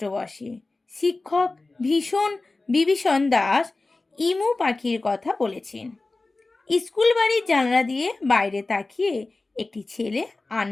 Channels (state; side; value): quieter; right; 3.3 dB